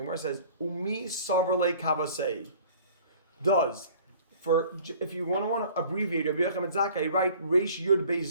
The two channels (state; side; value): inverted; both; correlation -0.50